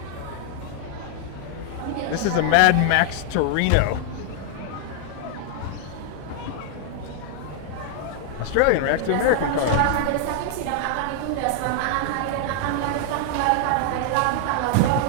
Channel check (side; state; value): both; different; correlation 0.00